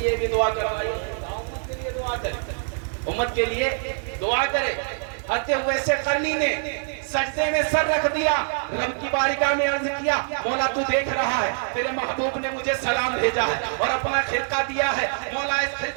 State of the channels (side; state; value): left; silent; digital silence